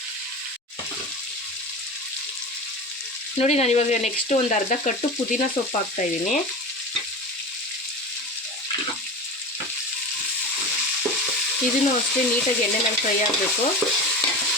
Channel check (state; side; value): normal; both; correlation 0.28